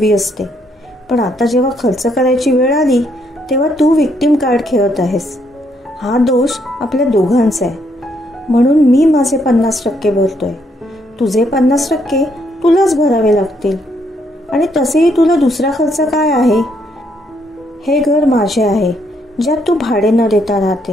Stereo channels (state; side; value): normal; both; correlation 0.73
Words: असते, पण आता जेव्हा खर्च करायची वेळ आली तेव्हा तू विक्टिम कार्ड खेळत आहेस. हा दोष आपल्या दोघांचा आहे. म्हणून मी माझे 50% भरतोय. तुझे 50% तुलाच भरावे लागतील. आणि तसेही तुला दुसरा खर्च काय आहे? हे घर माझे आहे ज्यात तू भाडे न देता